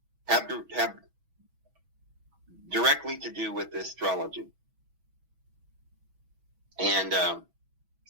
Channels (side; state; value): left; late; 6.1 ms